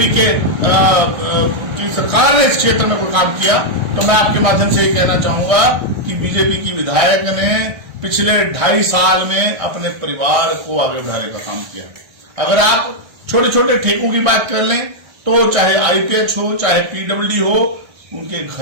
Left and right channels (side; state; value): left; late; 1.6 ms